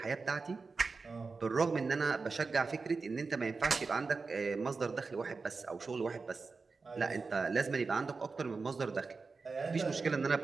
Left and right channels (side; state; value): left; quieter; 4.4 dB